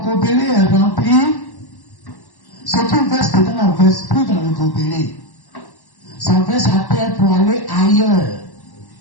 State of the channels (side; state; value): right; late; 1.1 ms